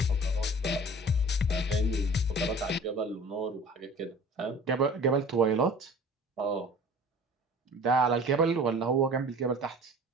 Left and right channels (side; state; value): both; normal; correlation 0.44